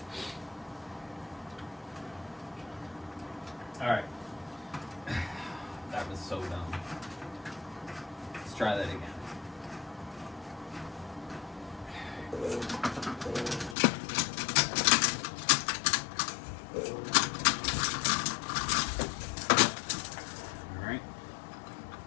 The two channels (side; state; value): right; drops out; at 13.8 s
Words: Alright. That was so dumb. Let's try that again. Alright.